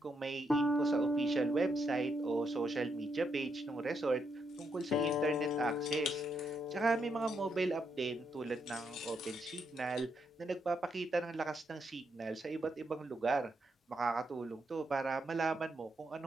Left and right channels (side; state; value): both; normal; correlation 0.79